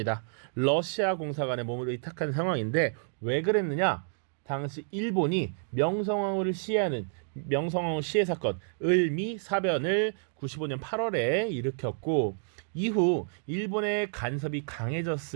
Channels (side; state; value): left; silent; digital silence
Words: 러시아 공사관에 몸을 의탁한 상황인데 왜 그랬느냐? 당시 일본이 명성황후를 시해하는 명성황후 시해 사건 을미사변을 95년 8월에 일으켰고 이후 일본의 간섭이